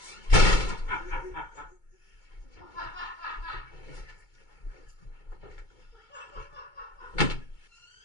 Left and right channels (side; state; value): right; late; 2.2 ms